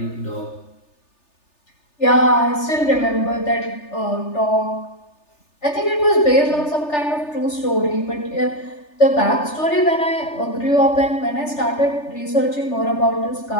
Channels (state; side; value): late; right; 3.4 ms